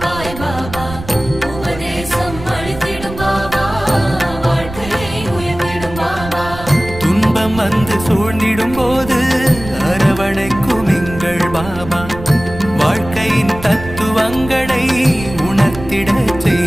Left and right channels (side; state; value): right; noise; rumble, 12 dB below the sound